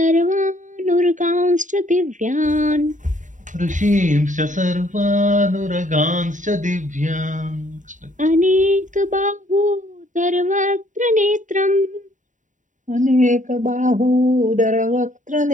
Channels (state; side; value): late; left; 0.37 ms